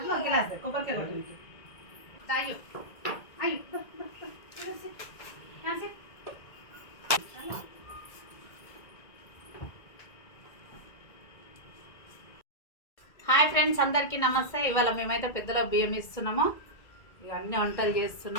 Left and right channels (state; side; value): late; right; 1.8 ms